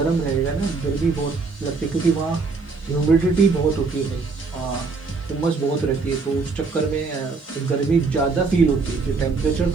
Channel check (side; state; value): left; quieter; 4.3 dB